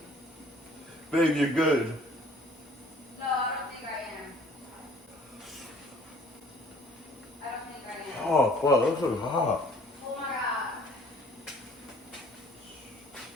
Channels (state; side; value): normal; both; correlation 0.55